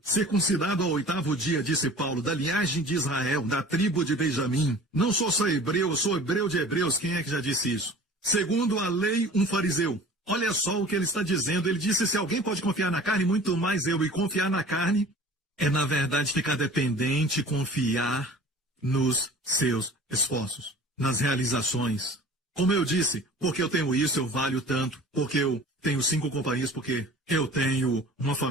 circuncidado ao 8º dia, disse Paulo, da linhagem de Israel, da tribo de Benjamim. Não sou só hebreu, eu sou hebreu de hebreus. Quem é que já disse isso? Segundo a lei, um fariseu. Olha só o que ele está dizendo. Ele disse, se alguém pode confiar na carne, muito mais eu. E confiar na carne é, na verdade, ficar dependente, confiar nos seus esforços, nas realizações. Como eu disse, porque eu tenho isso, eu valho tanto, porque eu tenho 5 companhias, porque eu tenho uma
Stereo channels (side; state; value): both; normal; correlation 0.43